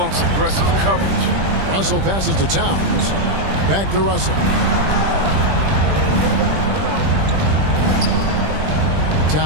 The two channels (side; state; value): left; late; 20 ms